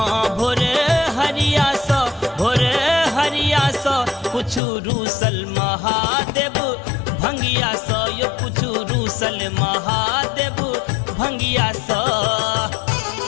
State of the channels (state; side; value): drops out; right; at 4.6 s